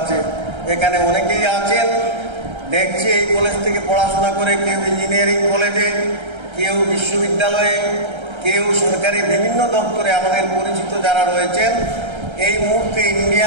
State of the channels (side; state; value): left; late; 1.3 ms